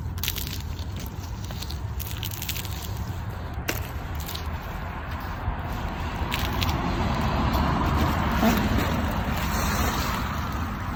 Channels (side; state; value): both; identical; correlation 1.00